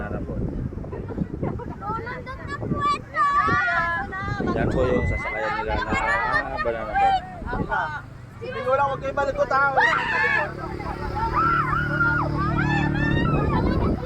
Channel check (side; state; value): both; identical; correlation 1.00